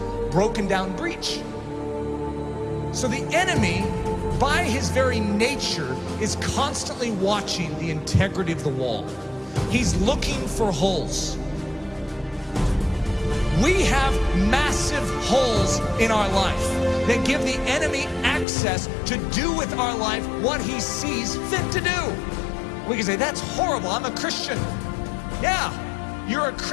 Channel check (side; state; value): right; drops out; at 18.4 s